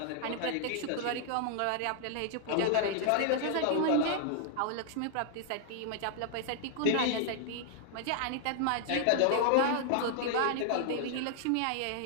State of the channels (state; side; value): different; both; correlation 0.00